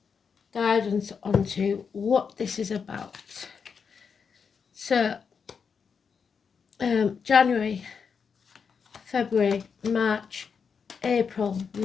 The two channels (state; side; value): quieter; right; 6.1 dB